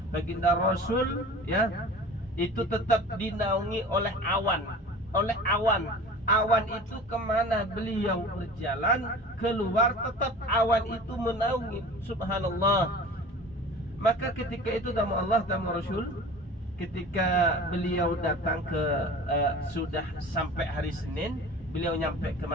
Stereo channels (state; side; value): normal; both; correlation 0.39